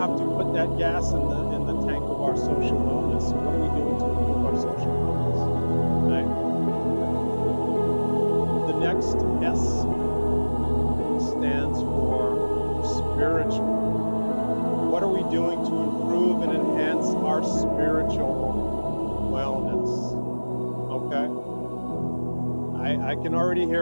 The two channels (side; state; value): both; inverted; correlation -1.00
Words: put that gas in the tank of our social wellness. So what are we doing to improve our social wellness? Right? The next S stands for spiritual. What are we doing to improve and enhance our spiritual wellness? Okay. I can already